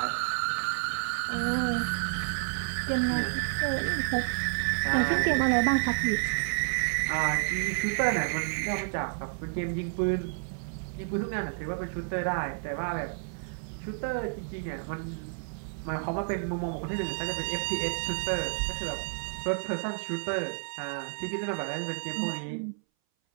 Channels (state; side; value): silent; left; 58 dB below the other